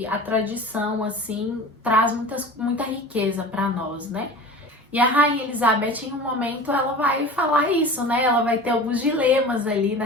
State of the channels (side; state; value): both; normal; correlation 0.36